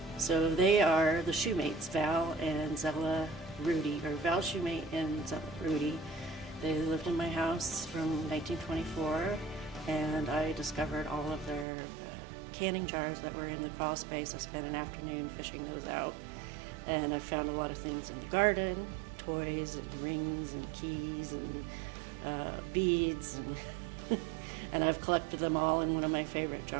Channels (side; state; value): left; drops out; at 11.7 s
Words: so they are the Shoemates, Val and Zella Rudy, or Val Shoemate and Zella Rudy. They lived in my house from 1924, and I discovered all of their canning jars that were in the crawl space. I spent an afternoon fishing those out, and I found a lot of things in the garden, toys and rings and keys and beads, and I've collected them all in one of my favorite